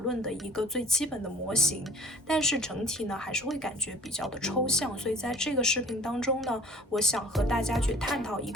的一个最基本的模型，但是整体呢还是会感觉比较的抽象。所以在这个视频当中呢，我想和大家去探讨一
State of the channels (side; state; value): both; normal; correlation 0.49